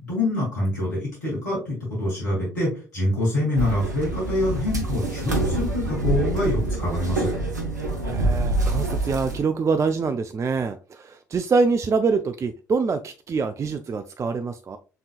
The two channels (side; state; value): both; normal; correlation 0.61